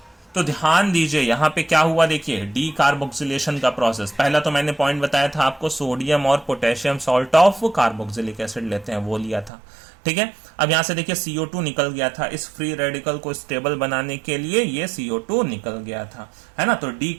तो ध्यान दीजिए यहां पे क्या हुआ, देखिए डी कार्बोक्सिलेशन का प्रोसेस। पहला तो मैंने पॉइंट बताया था आपको, सोडियम और potassium salt of carboxylic acid लेते हैं, वो लिया था, ठीक है। अब यहां से देखिए CO2 निकल गया था, इस फ्री रेडिकल को स्टेबल बनाने के लिए ये CO2 निकल गया था, है ना। तो डी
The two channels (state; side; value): drops out; left; at 9.5 s